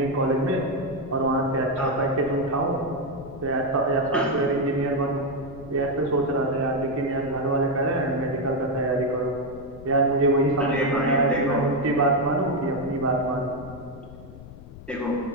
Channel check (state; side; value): noise; left; rumble, 16 dB below the sound